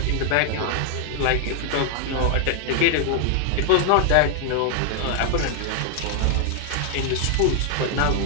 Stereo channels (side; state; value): both; different; correlation 0.00